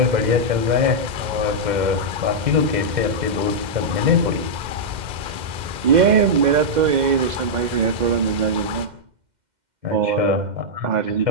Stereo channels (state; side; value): late; left; 2.1 ms